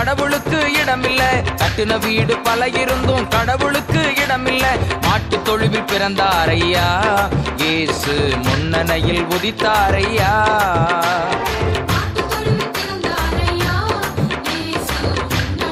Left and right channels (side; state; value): both; identical; correlation 1.00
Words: இடமில்ல. கட்டின வீடு பல இருந்தும் கடவுளுக்கு இடமில்ல. மாட்டு தொழுவில் பிறந்தாரையா, இயேசு முன்னணையில் உதித்தாரையா.